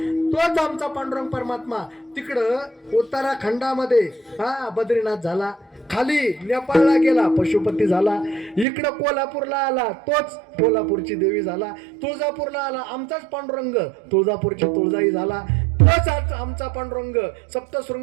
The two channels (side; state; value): left; drops out; at 8.7 s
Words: तोच आमचा पांडुरंग परमात्मा तिकडं उत्तराखंडामध्ये बद्रीनाथ झाला. खाली नेपाळला गेला पशुपती झाला. इकडं कोल्हापूरला आला तोच कोल्हापूरची देवी झाला. तुळजापूरला आला आमचाच पांडुरंग तुळजापूरची तुळजाई झाला. तोच आमचा पांडुरंग